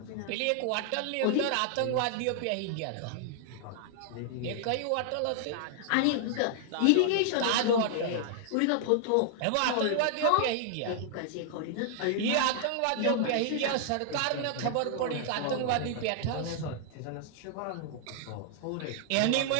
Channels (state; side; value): different; both; correlation 0.00